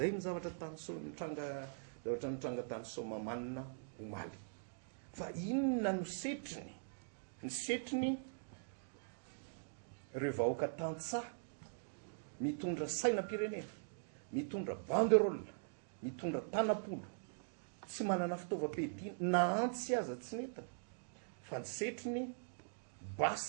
ny zavatra nitranga tany Somamana omaly. Fa inona no setriny? Ny setriny ireo vahoaka tantsaha mitondra sainam-pirenena, mitondra banderole, mitondra tanapolo, tsy manana fitaovam-piadiana na antsy aza tsy neta fa ny setrony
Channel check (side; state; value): left; silent; digital silence